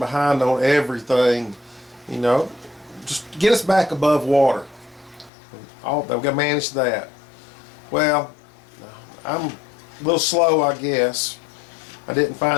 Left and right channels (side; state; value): right; drops out; at 5.3 s